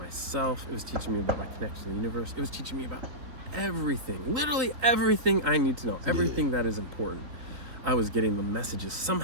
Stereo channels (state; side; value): late; left; 3.8 ms